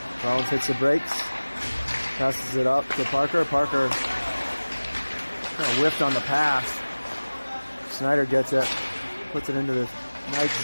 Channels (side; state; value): both; inverted; correlation -1.00